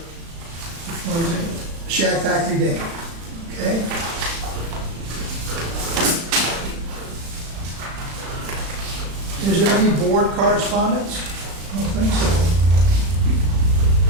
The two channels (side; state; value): left; late; 36 ms